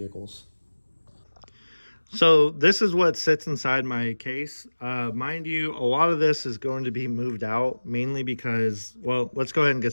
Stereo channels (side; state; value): both; inverted; correlation -1.00